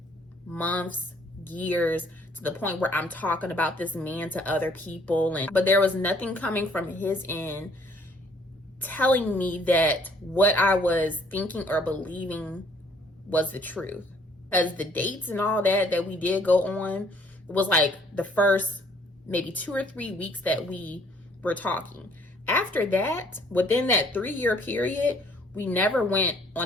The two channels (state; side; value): normal; both; correlation 0.61